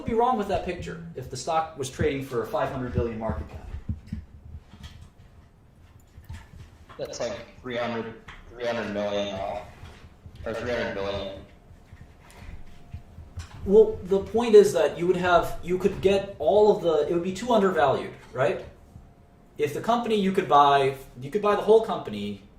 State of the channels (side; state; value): both; identical; correlation 1.00